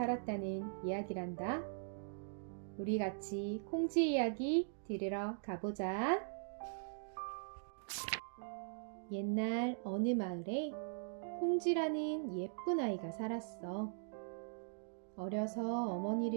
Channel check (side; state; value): left; silent; digital silence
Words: 이야기란다. 우리 같이 콩쥐 이야기 들으러 가보자. 옛날 어느 마을에 콩쥐라는 예쁜 아이가 살았어. 어려서